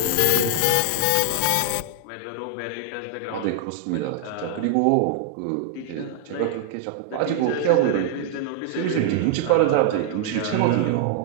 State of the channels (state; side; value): different; both; correlation 0.00